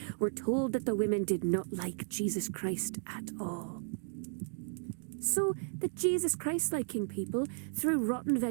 were told that the women did not like Jesus Christ at all. So the Jesus Christ-liking people threw rotten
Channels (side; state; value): left; silent; 55 dB below the other